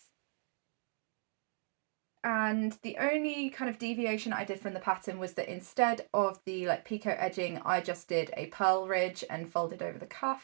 And the only kind of deviation I did from the pattern was that instead of the like Picot edging, I just did a purl ridge and folded over the cuff.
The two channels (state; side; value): silent; left; 54 dB below the other